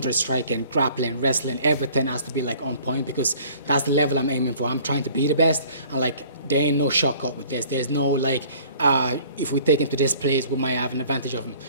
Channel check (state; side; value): inverted; both; correlation -0.53